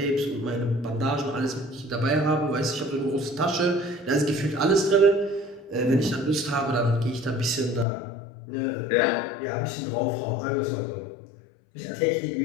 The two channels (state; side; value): drops out; right; at 7.9 s